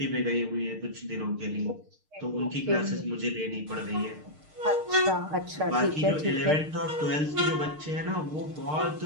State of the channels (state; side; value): late; left; 6.6 ms